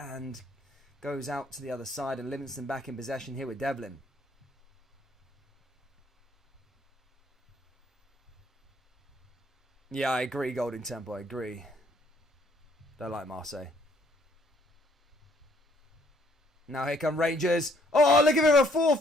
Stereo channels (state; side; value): normal; both; correlation 0.65